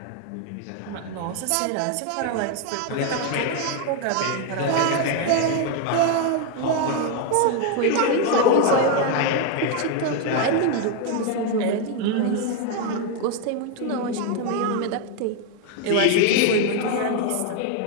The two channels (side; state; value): both; different; correlation 0.01